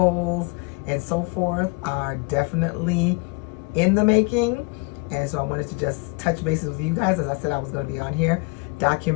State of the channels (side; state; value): right; quieter; 27.7 dB